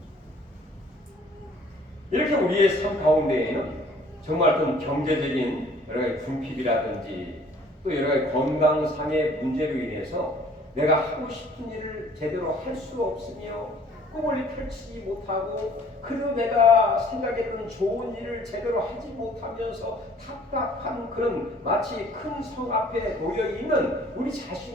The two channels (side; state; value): both; normal; correlation 0.55